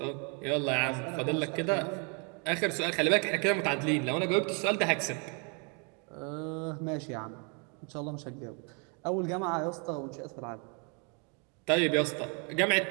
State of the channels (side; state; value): left; quieter; 35.8 dB